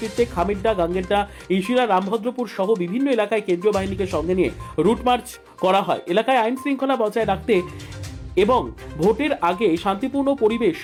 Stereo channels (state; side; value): identical; both; correlation 1.00